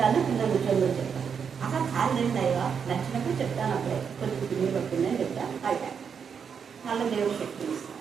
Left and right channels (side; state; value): left; quieter; 6.8 dB